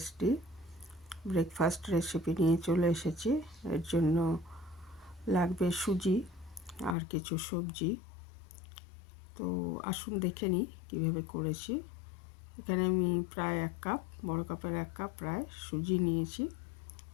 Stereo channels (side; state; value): right; drops out; at 7.0 s